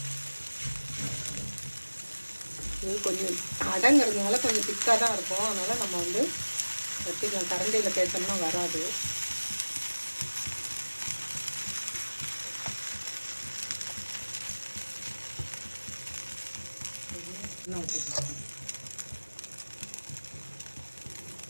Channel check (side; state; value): both; inverted; correlation -1.00